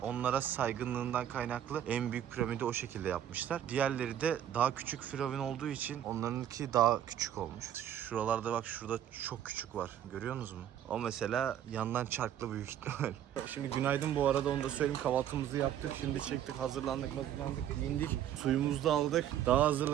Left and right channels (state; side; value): quieter; left; 10.6 dB